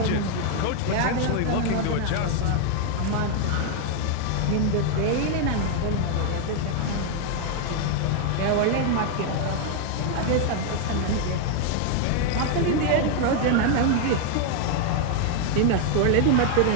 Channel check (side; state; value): both; different; correlation 0.00